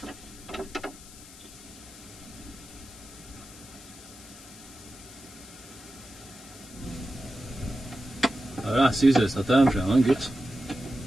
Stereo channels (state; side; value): noise; left; hiss, 18 dB below the sound